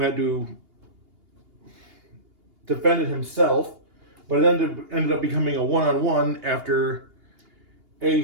had to defend it himself, but it ended up becoming a one-on-one after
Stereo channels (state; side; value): late; left; 2.8 ms